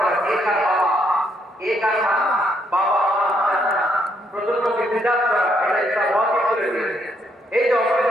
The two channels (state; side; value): normal; both; correlation 0.73